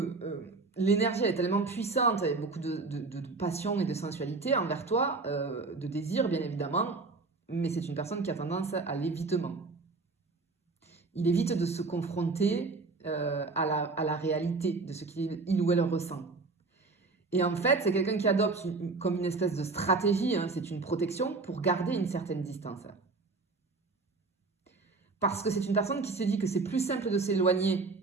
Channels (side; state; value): left; quieter; 3.8 dB